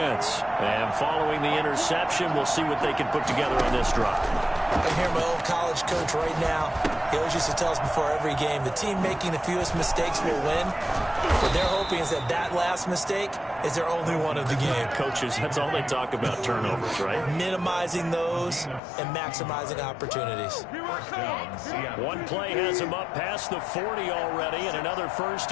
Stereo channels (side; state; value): right; drops out; at 18.8 s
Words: And following the interception, we'll see what they can put together on this drive. I hear my old college coach right now. He always used to tell us before every game, the team making the fewest mistakes will win. What they're hoping is that that last mistake is their only one of the game. Coaches, that's all they talk about, turnovers, right? Minimizing those and maximizing opportunities. One play has them up past the 40 already, and another